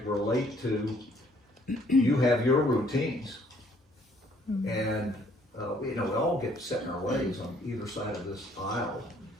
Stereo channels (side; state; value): both; normal; correlation 0.63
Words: relate to you have your routines, and we all get set in our ways on either side of this aisle.